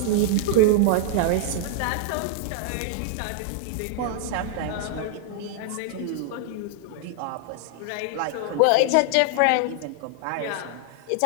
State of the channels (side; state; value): both; different; correlation -0.01